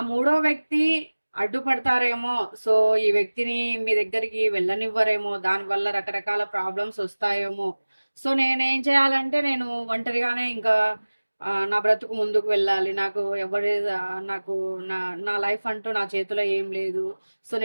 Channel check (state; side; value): inverted; both; correlation -1.00